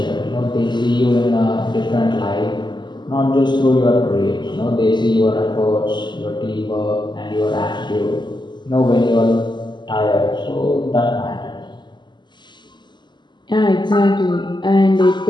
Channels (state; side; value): late; right; 0.21 ms